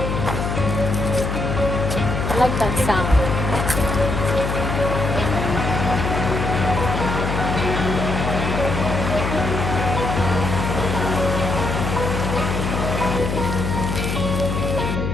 I like that sound.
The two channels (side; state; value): left; noise; hum, 2 dB below the sound